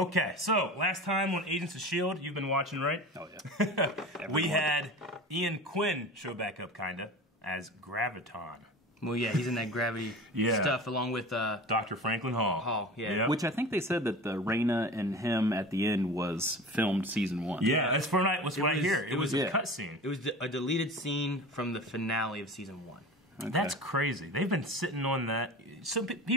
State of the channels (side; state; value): both; normal; correlation 0.34